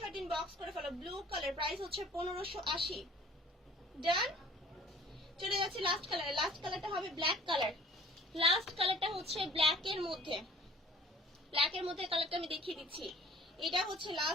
ইনবক্স করে ফেলো। ব্লু কালার প্রাইস হচ্ছে 1580। ডান, চলে যাচ্ছে লাস্ট কালারে। লাস্ট কালারটা হবে ব্ল্যাক কালার। লাস্ট কালারটা হচ্ছে ব্ল্যাকের মধ্যে, ব্ল্যাকের মধ্যে কালারটা আমি দেখিয়ে দিচ্ছি। এটা হচ্ছে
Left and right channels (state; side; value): normal; both; correlation 0.51